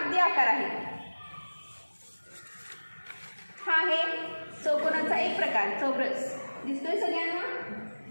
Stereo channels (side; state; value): both; inverted; correlation -1.00